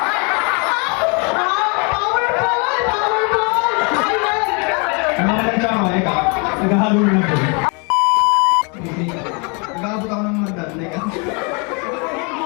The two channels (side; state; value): right; quieter; 33.7 dB